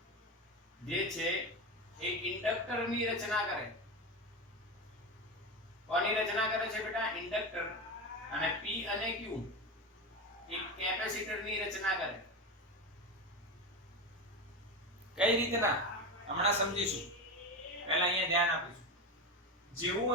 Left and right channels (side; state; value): both; normal; correlation 0.20